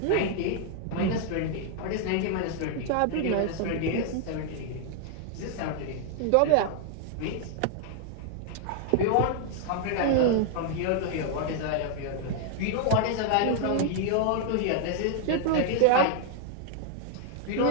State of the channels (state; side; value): different; both; correlation 0.00